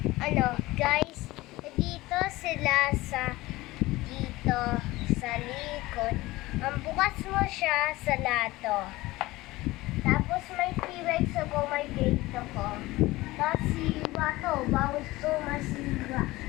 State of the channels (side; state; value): right; quieter; 19.2 dB